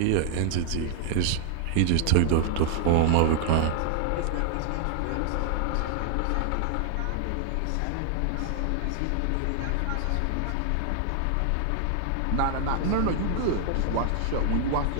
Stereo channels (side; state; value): both; different; correlation 0.00